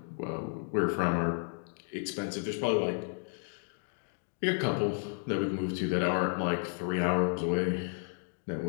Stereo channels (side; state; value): right; silent; 56 dB below the other